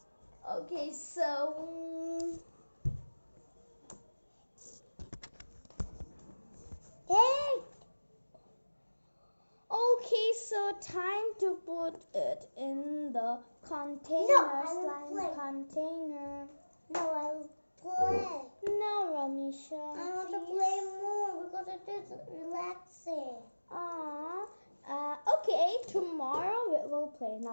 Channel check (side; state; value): both; inverted; correlation -1.00